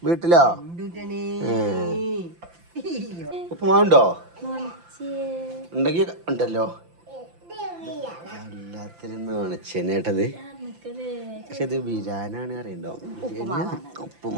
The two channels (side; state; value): left; late; 5.8 ms